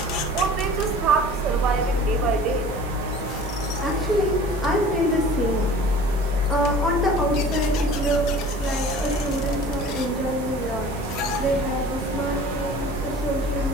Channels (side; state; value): both; normal; correlation 0.44